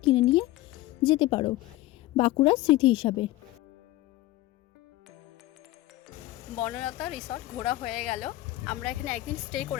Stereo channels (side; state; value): right; quieter; 16.8 dB